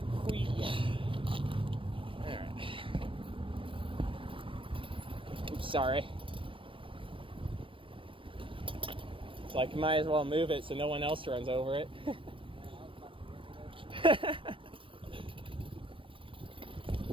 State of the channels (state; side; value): late; left; 0.25 ms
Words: Whee. Alright. Oops, sorry. It's like, might as well move it so no one else runs over it.